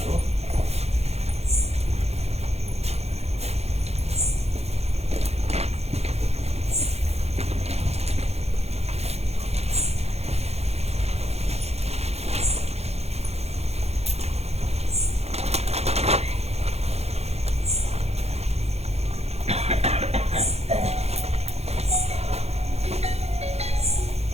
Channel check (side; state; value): left; late; 0.31 ms